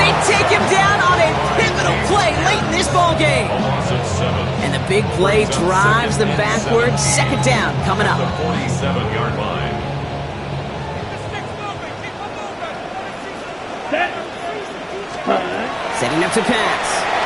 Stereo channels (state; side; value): identical; both; correlation 1.00